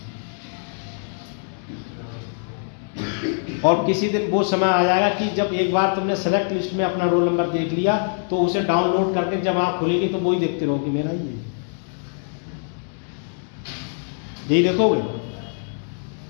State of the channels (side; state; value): right; silent; 63 dB below the other